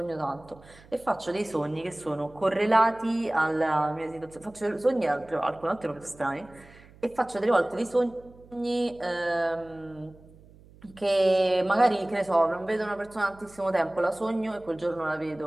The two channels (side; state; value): right; noise; hum, 24 dB below the sound